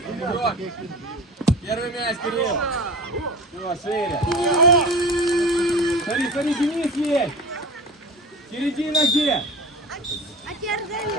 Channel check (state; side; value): normal; both; correlation 0.35